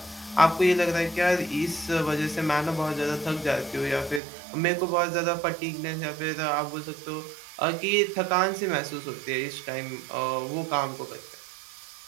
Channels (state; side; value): drops out; left; at 4.2 s